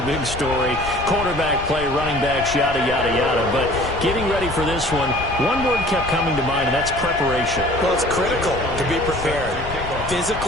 big story. Quarterback play, running backs, yada, yada, yada. But getting ready for this one word kept coming to mind, and that's preparation. Well, it's critical to be prepared.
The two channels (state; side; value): noise; left; rumble, 11 dB below the sound